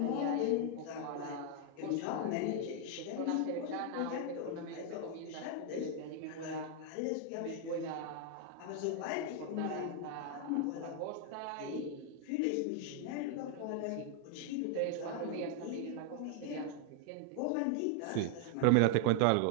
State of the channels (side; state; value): both; different; correlation 0.00